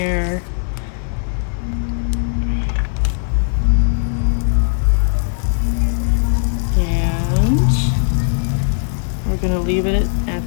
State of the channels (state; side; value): silent; right; digital silence